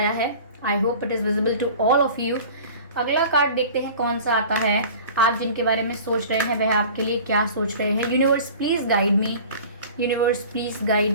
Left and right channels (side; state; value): both; inverted; correlation -0.42